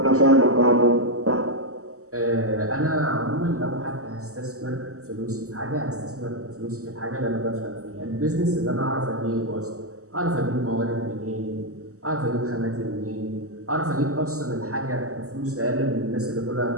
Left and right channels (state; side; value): late; left; 0.65 ms